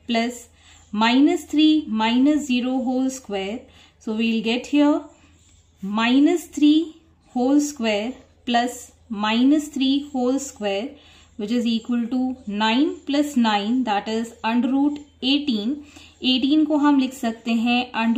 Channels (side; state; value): both; identical; correlation 1.00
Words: plus -3 -0 whole square. So we will get here -3 whole square plus -3 whole square, which is equal to 9 + 9, that is √18. 18 को हम लिख सकते हैं